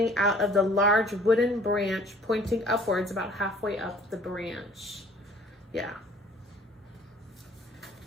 out of the large wooden branch, pointing upwards about halfway up the branch. Yeah.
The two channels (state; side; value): normal; both; correlation 0.53